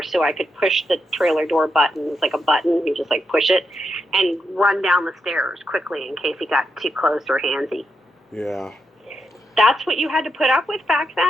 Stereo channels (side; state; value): both; normal; correlation 0.84